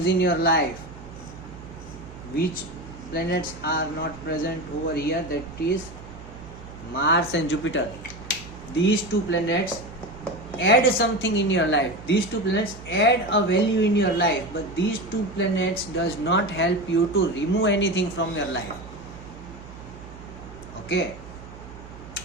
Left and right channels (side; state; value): right; noise; hum, 16 dB below the sound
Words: in your life. Which planets are not present over here? That is Mars and Jupiter. These two planets add something in your life. These two planets add a value in your life, but these two planets does not help you to remove anything from your life. Okay.